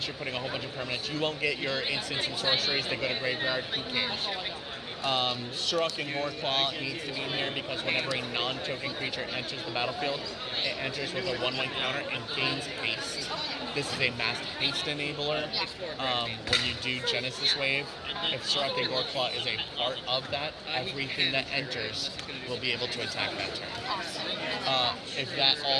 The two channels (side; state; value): both; identical; correlation 1.00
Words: you're putting a whole bunch of permanents. You won't get your instants and sorceries that go to graveyard. Who cares? Sirach and Goreclaw needs to be in here because whenever a non-token creature enters the battlefield, it enters with a 1/1 counter and gains haste. This is a mass haste enabler. When you do Genesis Wave, if Sirach and Goreclaw is a part of that, everything that enters will be able to attack that turn. If that